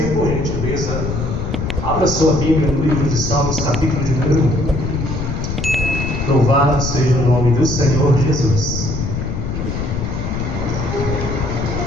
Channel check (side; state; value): left; noise; rumble, 3 dB below the sound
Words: por gentileza, abra sua Bíblia no livro de Salmos, capítulo de número 1. Louvado seja o nome do Senhor Jesus.